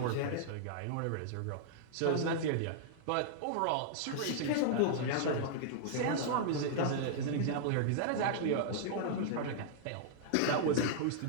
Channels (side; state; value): both; different; correlation -0.01